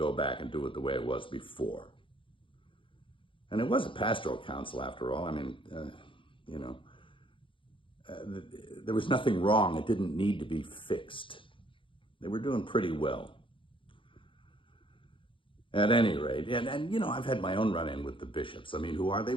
back and do it the way it was before. And it was a pastoral council after all. I mean, there was nothing wrong. It didn't need to be fixed. They were doing pretty well. At any rate, and I've had my own run-in with the bishops. I mean, who are they?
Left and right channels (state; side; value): late; right; 0.25 ms